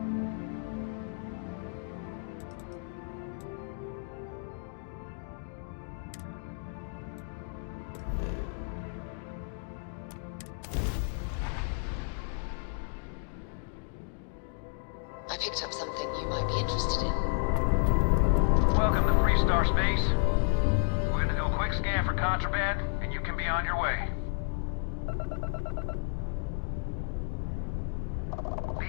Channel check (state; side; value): silent; right; 57 dB below the other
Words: I picked up something you might be interested in. Welcome to Free Star Space. We're gonna do a quick scan for contraband, and you can be on your way.